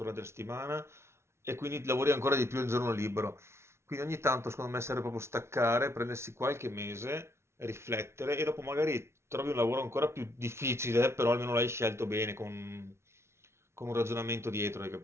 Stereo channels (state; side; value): late; left; 0.13 ms